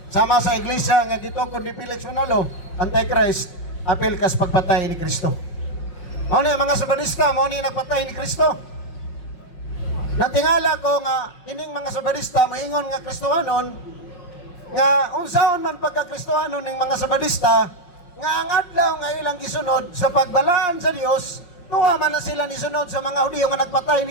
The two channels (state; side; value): late; right; 5.5 ms